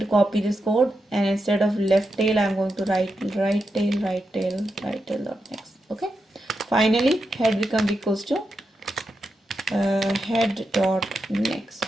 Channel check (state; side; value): normal; both; correlation 0.87